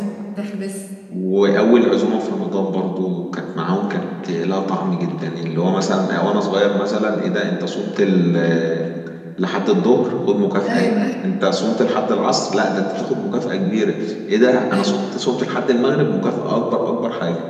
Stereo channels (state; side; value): identical; both; correlation 1.00